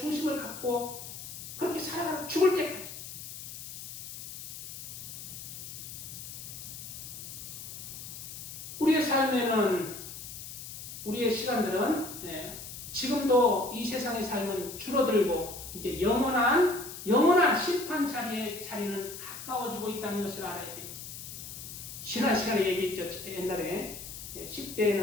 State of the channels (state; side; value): noise; left; hiss, 10 dB below the sound